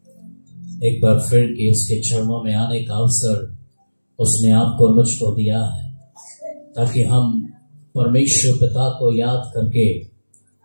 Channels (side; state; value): both; inverted; correlation -1.00